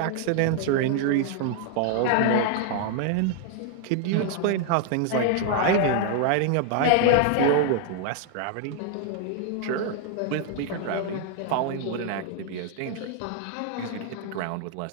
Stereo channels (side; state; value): both; different; correlation 0.00